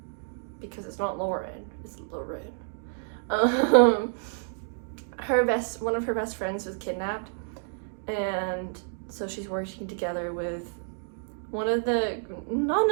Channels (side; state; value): left; silent; digital silence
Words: because it's not Lauren, it's Lauren, one of her best friends was kidnapped, and so she's working together with one of the not